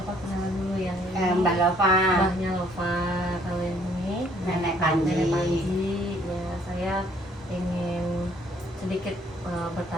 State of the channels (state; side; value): normal; both; correlation 0.62